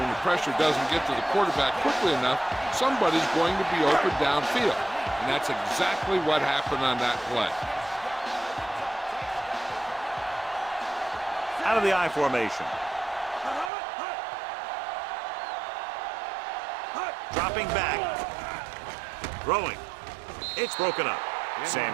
the pressure doesn't get to the quarterback quickly enough, somebody's going to be open downfield. And that's exactly what happened on that play. Out of the I formation. Dropping back. Throwing. It's broken up.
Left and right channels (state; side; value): drops out; left; at 13.7 s